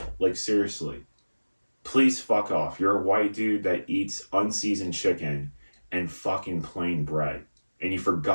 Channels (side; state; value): both; inverted; correlation -1.00